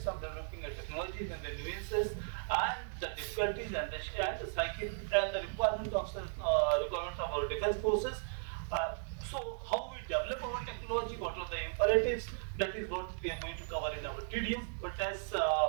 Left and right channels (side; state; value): left; silent; digital silence